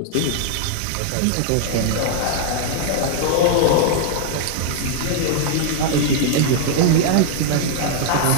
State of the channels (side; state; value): both; different; correlation -0.01